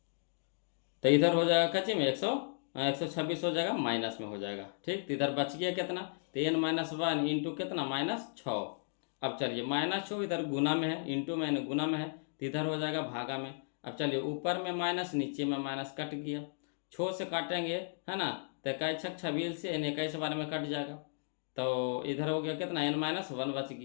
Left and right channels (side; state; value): right; silent; digital silence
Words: तो इधर हो जाएगा कच्चे में 126 हो जाएगा, माइनस में हो जाएगा, ठीक। तो इधर बच गया कितना, तो एन -1 इंटू कितना, -6। अब चलिए, -6 इधर गुना में है, इंटू में गुना में है, तो इधर हो जाएगा भागा में। अब चलिए ऊपर में माइनस नीचे में माइनस कट गया, छो से काटेंगे है ना, तो 21 छक 26 से यानी 21 बार में कट जाएगा। तो इधर हो गया कितना n-1 बच